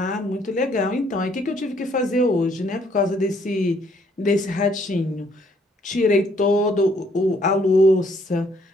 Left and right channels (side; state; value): both; normal; correlation 0.66